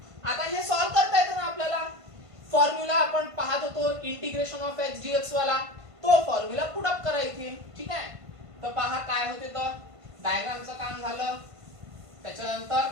आता हे सॉल्व्ह करता येतं ना आपल्याला. फॉर्म्युला आपण पाहत होतो इंटिग्रेशन ऑफ एक्स डीएक्स वाला, तो फॉर्म्युला पुट अप करा इथे, ठीक आहे. तर पहा काय होते, तर डायग्रामचं काम झालं, त्याच्यानंतर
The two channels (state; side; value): late; left; 1.5 ms